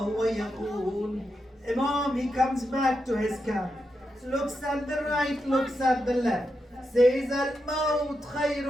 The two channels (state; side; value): normal; both; correlation 0.86